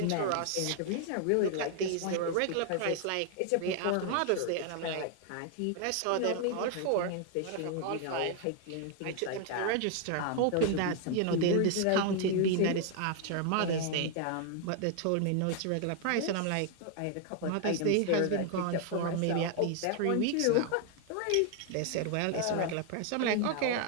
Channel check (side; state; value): both; different; correlation 0.00